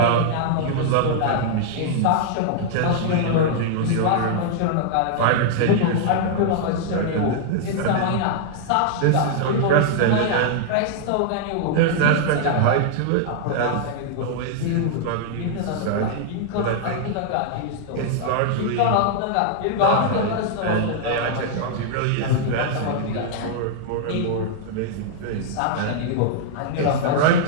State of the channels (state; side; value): different; both; correlation -0.01